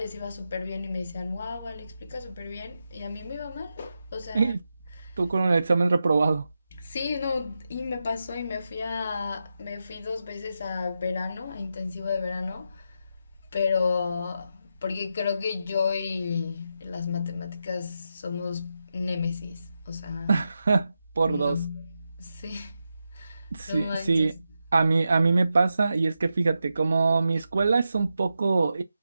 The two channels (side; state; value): both; inverted; correlation -0.88